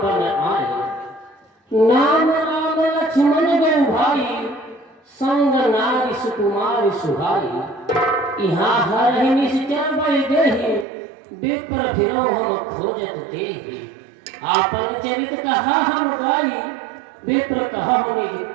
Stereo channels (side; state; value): left; drops out; at 10.9 s